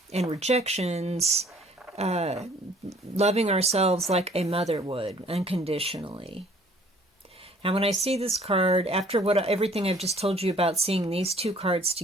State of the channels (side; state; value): both; normal; correlation 0.56